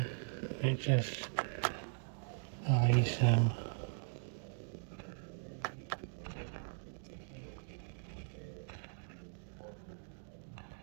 it just lays them.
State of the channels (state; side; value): silent; left; digital silence